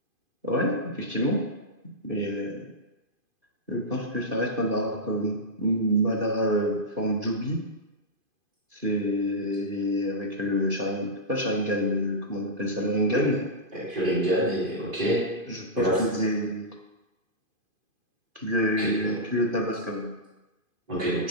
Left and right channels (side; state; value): left; late; 2.5 ms